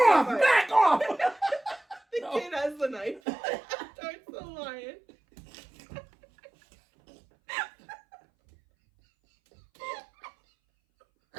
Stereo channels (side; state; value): left; drops out; at 3.2 s